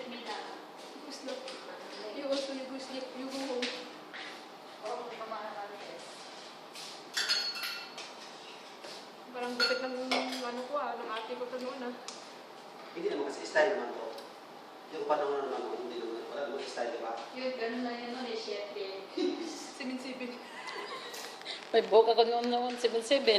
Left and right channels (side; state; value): both; identical; correlation 1.00